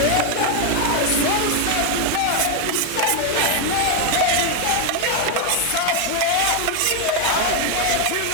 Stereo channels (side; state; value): both; different; correlation 0.01